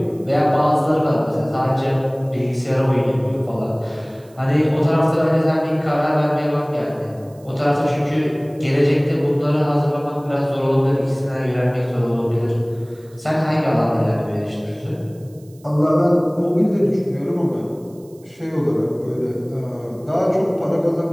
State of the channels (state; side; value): noise; right; hiss, 29 dB below the sound